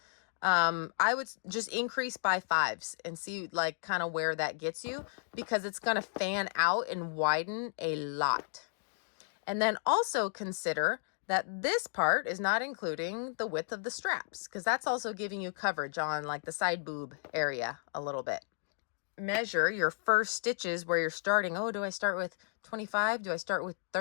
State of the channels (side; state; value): right; silent; digital silence